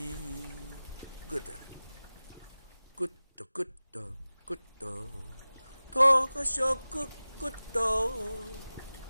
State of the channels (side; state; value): both; inverted; correlation -0.97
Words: 骨头。骨头骨头骨头，头壳上骨骨头，